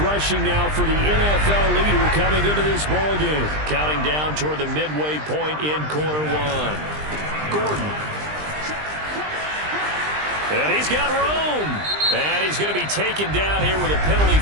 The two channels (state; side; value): late; left; 20 ms